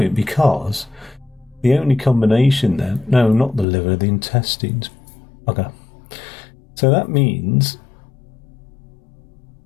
because the only combination then... No, not the liver, the intestines. Okay. So that means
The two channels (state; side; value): drops out; right; at 3.7 s